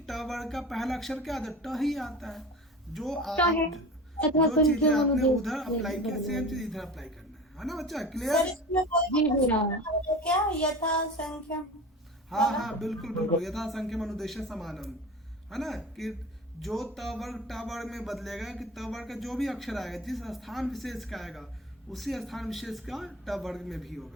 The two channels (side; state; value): both; normal; correlation 0.34